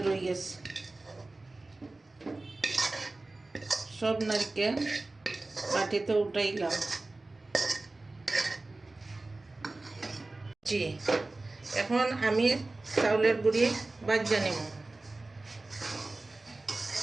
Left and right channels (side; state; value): left; quieter; 3.1 dB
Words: রয়ে গেছে। সব নারকেল বাটিতে উঠাইলাম। জি, এখন আমি চাউলের গুঁড়ি ভাজা নিব।